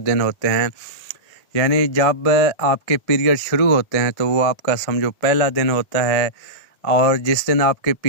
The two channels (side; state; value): right; late; 2.0 ms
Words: دن ہوتے ہیں، یعنی جب آپ کے پیریڈ شروع ہوتے ہیں تو وہ آپ کا سمجھو پہلا دن ہوتا ہے، اور جس دن آپ کے